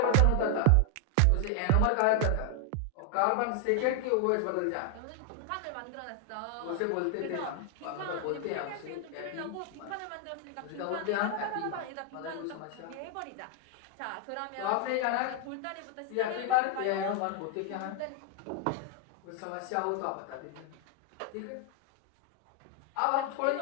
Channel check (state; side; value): different; both; correlation 0.00